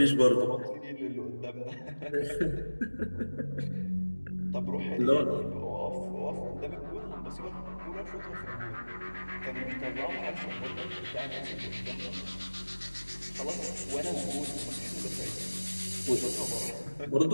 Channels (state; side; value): inverted; both; correlation -1.00